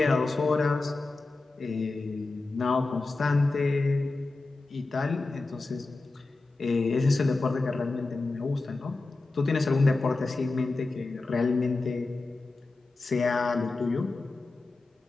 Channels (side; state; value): right; quieter; 3.4 dB